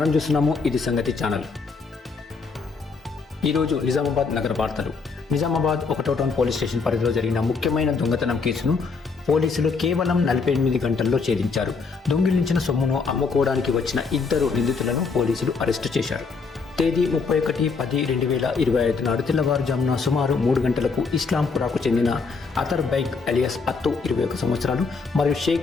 చూస్తున్నాము ఇది సంగతి ఛానల్. ఈరోజు నిజామాబాద్ నగర వార్తలు. నిజామాబాద్ 1వ టౌన్ పోలీస్ స్టేషన్ పరిధిలో జరిగిన ముఖ్యమైన దొంగతనం కేసును పోలీసులు కేవలం 48 గంటల్లో ఛేదించారు. దొంగిలించిన సొమ్మును అమ్ముకోవడానికి వచ్చిన 2 నిందితులను పోలీసులు అరెస్టు చేశారు. తేదీ 31/10/2025 నాడు తెల్లవారుజామున సుమారు 3 గంటలకు ఇస్లాంపురాకు చెందిన అతర్ బైక్ అలియాస్ అత్తు 21 సంవత్సరాలు మరియు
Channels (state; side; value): quieter; right; 4.7 dB